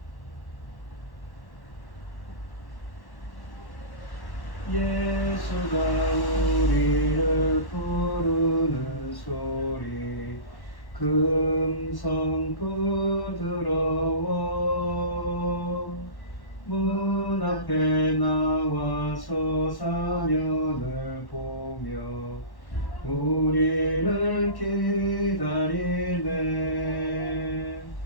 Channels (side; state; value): right; late; 1.1 ms